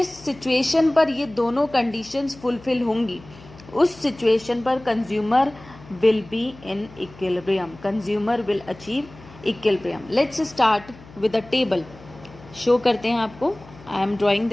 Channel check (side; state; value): left; noise; hum, 21 dB below the sound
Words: सिचुएशन पर ये दोनों कंडीशंस फुलफिल होंगी उस सिचुएशन पर consumer will be in equilibrium, consumer will achieve equilibrium. Let's start with a table. Show करते हैं आपको. I am drawing